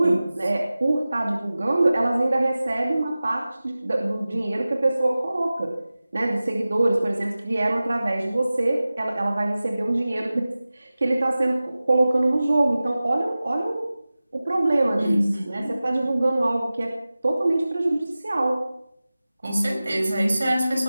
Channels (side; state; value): both; inverted; correlation -0.96